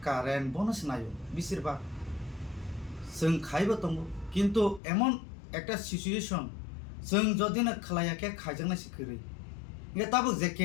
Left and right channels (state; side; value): drops out; right; at 4.8 s